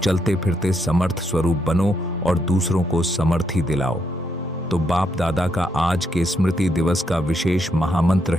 फिरते समर्थ स्वरूप बनो और दूसरों को समर्थी दिलाओ। तो बाप दादा का आज के स्मृति दिवस का विशेष महामंत्र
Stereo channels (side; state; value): both; normal; correlation 0.78